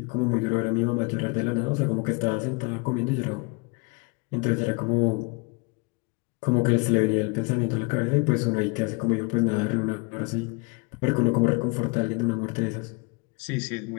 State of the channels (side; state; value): right; quieter; 29.2 dB